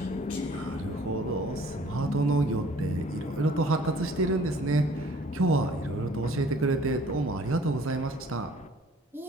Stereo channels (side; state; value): both; normal; correlation 0.54